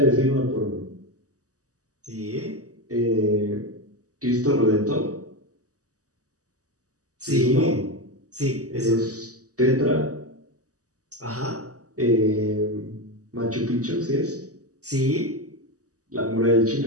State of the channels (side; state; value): left; late; 0.66 ms